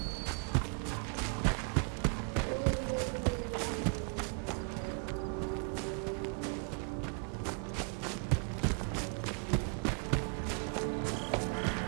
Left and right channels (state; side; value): quieter; left; 39.4 dB